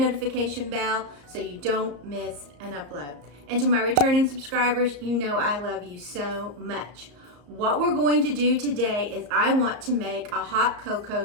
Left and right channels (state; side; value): late; left; 34 ms